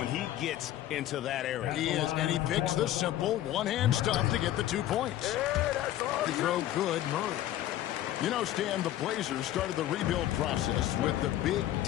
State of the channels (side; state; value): right; quieter; 13.2 dB